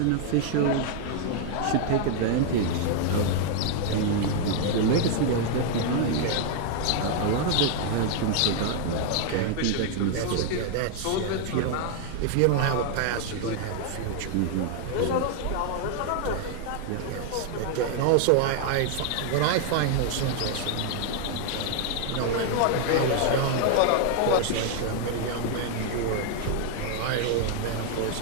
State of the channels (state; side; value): different; both; correlation 0.00